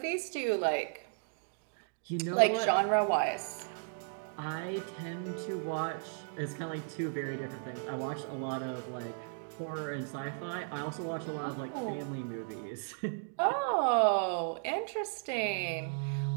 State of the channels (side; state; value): left; silent; digital silence